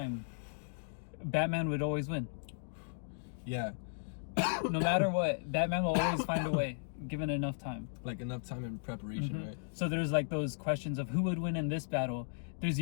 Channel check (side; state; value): right; silent; digital silence